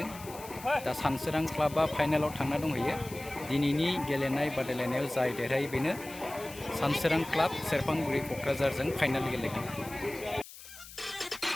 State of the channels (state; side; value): noise; left; hiss, 16 dB below the sound